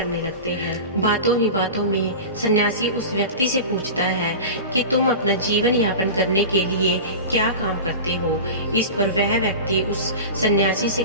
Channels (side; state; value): both; inverted; correlation -0.30